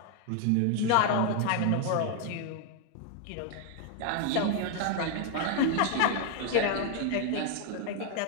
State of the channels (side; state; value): both; different; correlation 0.00